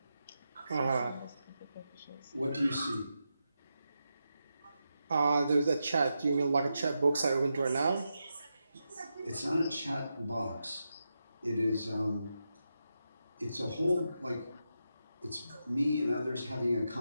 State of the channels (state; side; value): inverted; both; correlation -0.87